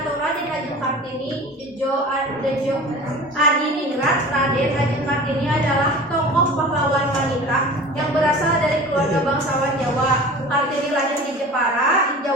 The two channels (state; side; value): normal; both; correlation 0.38